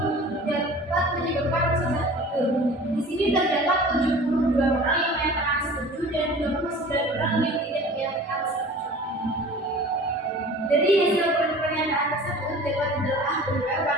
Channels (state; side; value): normal; both; correlation 0.43